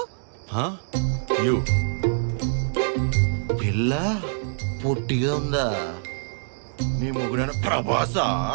యు పిల్ల పొట్టిగా ఉందా? నీ ముగ్గురైన ప్రభాసా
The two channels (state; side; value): silent; left; digital silence